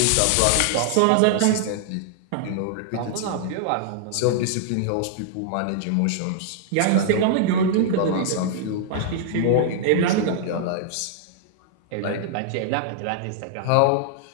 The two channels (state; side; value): different; both; correlation -0.01